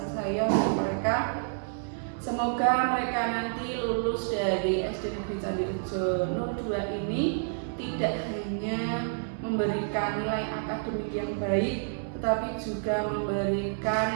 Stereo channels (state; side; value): silent; left; digital silence